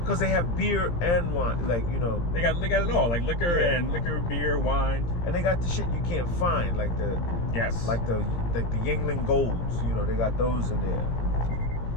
they have beer and wine, like you know. They got it all, like liquor and beer, wine, and they got the shit you can't find, like the the Yingling Golds. You know, they got those in there.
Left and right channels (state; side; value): late; right; 17 ms